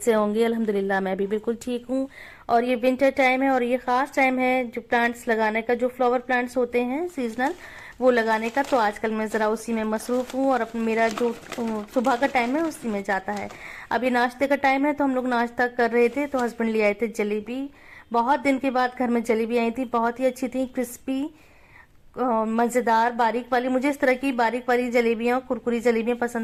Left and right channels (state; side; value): identical; both; correlation 1.00